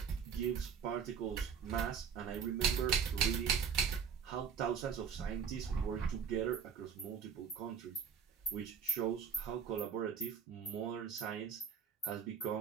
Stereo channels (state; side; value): quieter; left; 6.8 dB